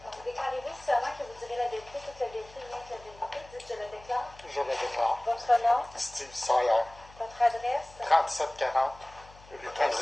déclarez-vous seulement que vous direz la vérité, toute la vérité, rien que la vérité. Dites, je le déclare. Je le déclare. Votre nom, Steve Sawyer, votre adresse, 3740, rue Votre adresse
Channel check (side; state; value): left; noise; hum, 22 dB below the sound